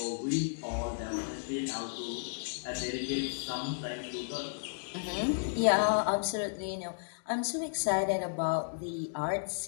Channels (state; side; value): silent; right; digital silence